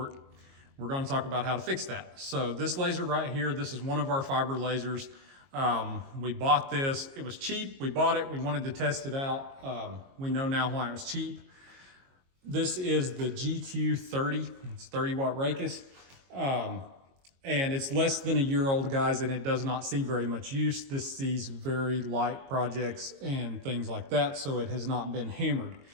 we're going to talk about how to fix that. So this laser right here, this is one of our fiber lasers. We bought this, it was cheap, we bought it, we wanted to test it out. We know now why it was cheap. This is the GQ30, it's 30 watt Raycus. And it's less than a year old, guys, and it does not see very much use. This sees very light projects and things like that, so it has not been hammered.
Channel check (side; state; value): left; late; 22 ms